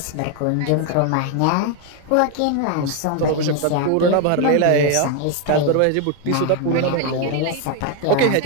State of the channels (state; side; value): different; both; correlation 0.01